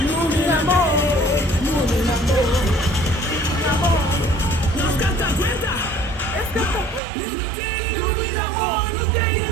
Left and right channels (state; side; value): drops out; left; at 7.0 s